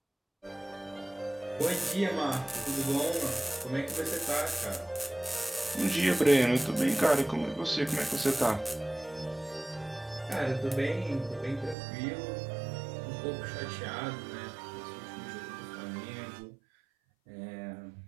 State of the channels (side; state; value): left; drops out; at 11.8 s